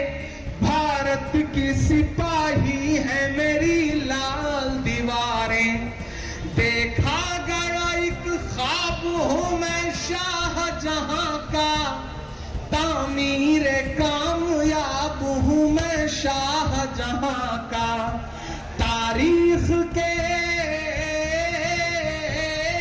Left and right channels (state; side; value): identical; both; correlation 1.00